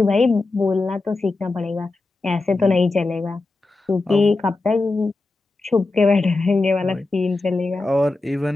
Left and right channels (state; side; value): quieter; right; 3.3 dB